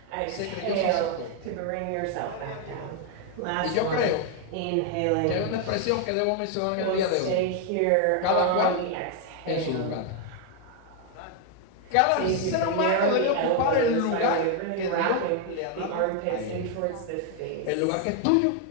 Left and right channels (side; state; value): both; different; correlation 0.00